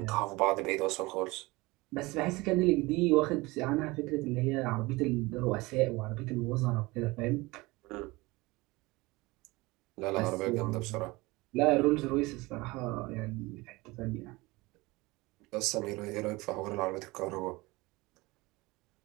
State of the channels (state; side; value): quieter; left; 22.3 dB